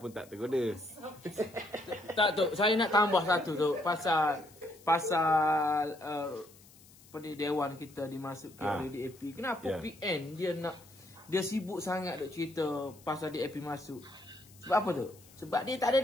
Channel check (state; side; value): noise; left; hiss, 24 dB below the sound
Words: tak tergoda. Tak tu, saya nak tambah satu tu pasal dewan kita dimasukkan oleh DAP. Kenapa PN dia sibuk sangat duk cerita pasal DAP masuk? Sebab apa tu? Sebab dia tak ada